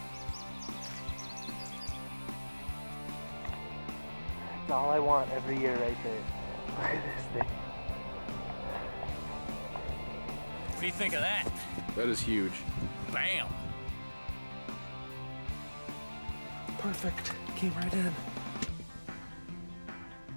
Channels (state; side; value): inverted; both; correlation -1.00